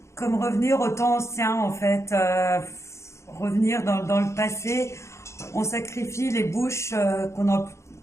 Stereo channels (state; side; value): late; right; 0.14 ms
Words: comme revenir au temps ancien en fait. Revenir dans le passé. On sacrifie les bouches qu'on a